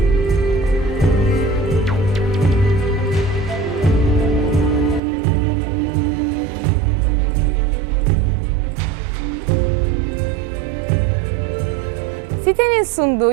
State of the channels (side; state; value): left; drops out; at 5.0 s